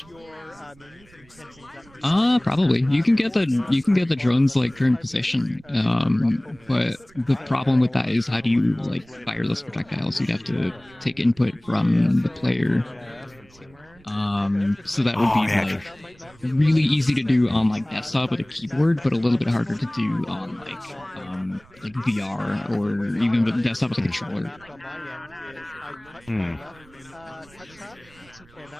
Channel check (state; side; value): noise; right; rumble, 27 dB below the sound